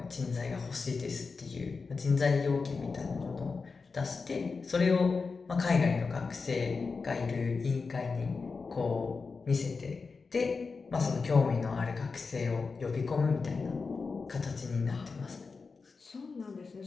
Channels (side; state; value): right; quieter; 4.6 dB